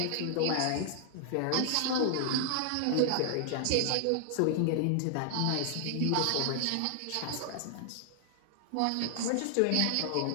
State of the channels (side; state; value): both; different; correlation 0.00